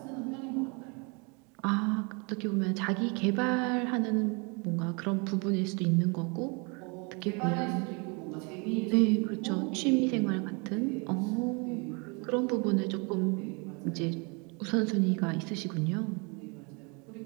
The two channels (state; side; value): quieter; left; 31.9 dB